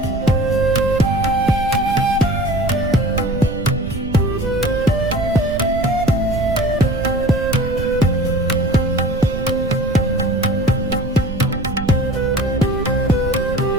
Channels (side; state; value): right; noise; rumble, 8 dB below the sound